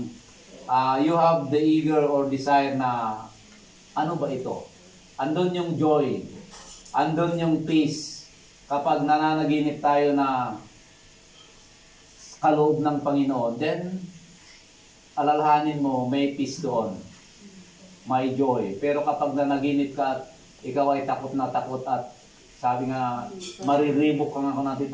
you have the eager or desire na ano ba ito? Andun yung joy, andun yung peace. Kapag nananaginip tayo na kaloob ng Panginoon, then alalahanin mo may peace doon, may joy. Pero kapag nanaginip ka at ikaw ay takot na takot at sabi nga mariribok ka nga kung natin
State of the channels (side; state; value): both; identical; correlation 1.00